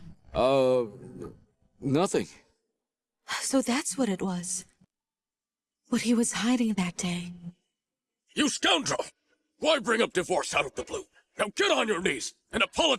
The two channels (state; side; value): identical; both; correlation 1.00